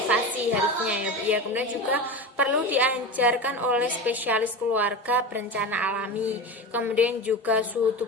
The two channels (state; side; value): normal; both; correlation 0.25